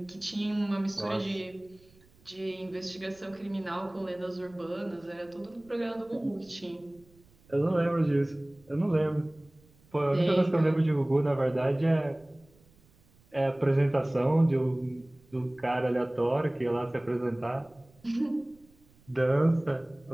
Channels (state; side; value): noise; right; rumble, 29 dB below the sound